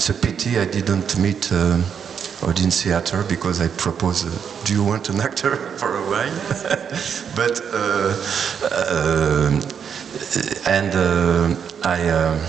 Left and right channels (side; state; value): left; quieter; 7.4 dB